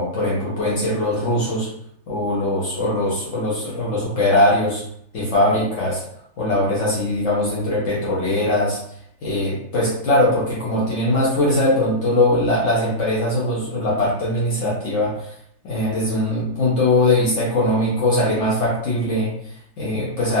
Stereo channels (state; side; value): late; right; 3.3 ms